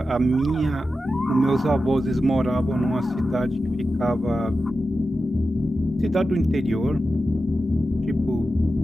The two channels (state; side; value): normal; both; correlation 0.92